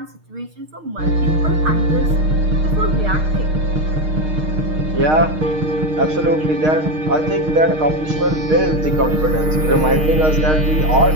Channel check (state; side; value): late; left; 6.5 ms